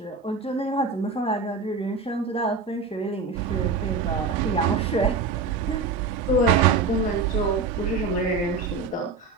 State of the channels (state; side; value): quieter; left; 4.4 dB